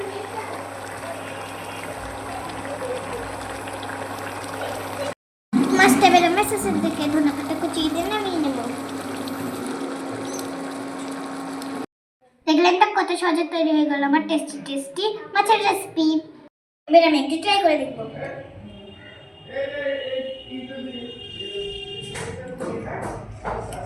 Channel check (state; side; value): identical; both; correlation 1.00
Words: মাছটা এবার আমি শেষের দিকে ধনেপাতা কুচিয়ে দিয়ে নামিয়ে নেব। দেখলেন তো কত সহজে তৈরি হয়ে গেল আমার টেস্টি টেস্টি মাছের রেসিপি। এবার আমি একটু ট্রাই করে দেখব।